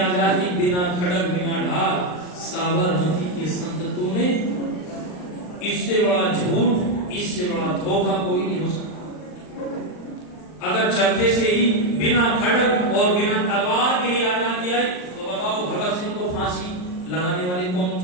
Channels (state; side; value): late; right; 39 ms